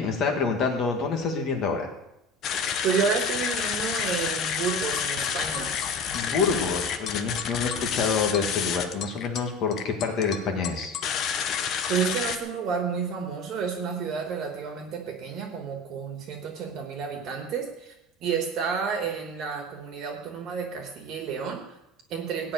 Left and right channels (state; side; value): normal; both; correlation 0.32